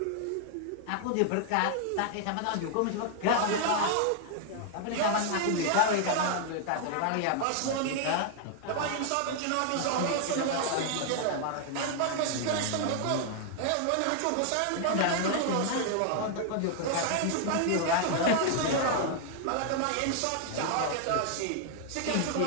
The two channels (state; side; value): different; both; correlation 0.00